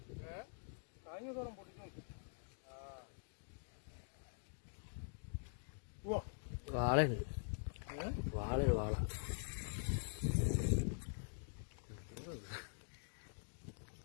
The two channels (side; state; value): right; silent; digital silence